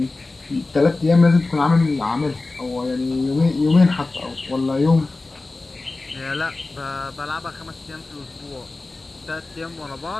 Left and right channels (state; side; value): quieter; right; 3.3 dB